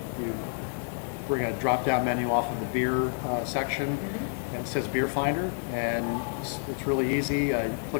we're going to drop down menu off of the beer section, and it says Beer Finder, and it's really easy.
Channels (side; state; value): right; silent; 59 dB below the other